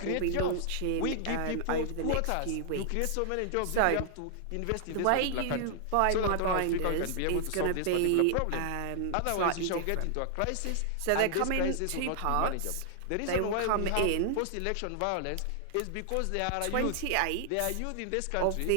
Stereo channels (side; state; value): both; different; correlation 0.00